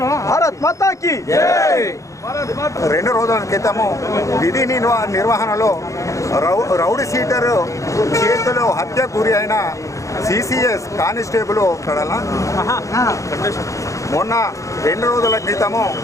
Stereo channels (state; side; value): late; right; 0.15 ms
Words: భారత్ మాతాకి 2 రోజుల క్రితము విధి నిర్వహణలో రౌడీ షీటర్ చేతిలో హత్యకు గురి అయిన సిసిఎస్ కానిస్టేబుల్ మొన్న 2 రోజుల క్రితము